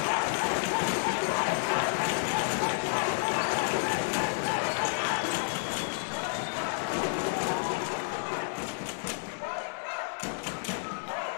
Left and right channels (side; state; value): right; silent; digital silence